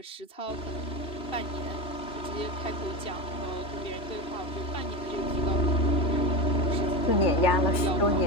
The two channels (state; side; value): late; right; 3.4 ms